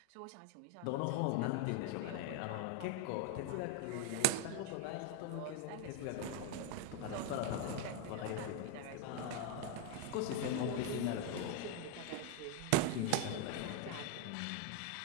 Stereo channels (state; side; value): different; both; correlation 0.00